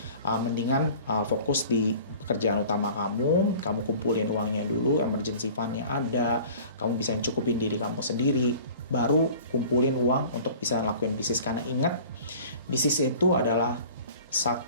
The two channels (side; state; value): both; inverted; correlation -0.45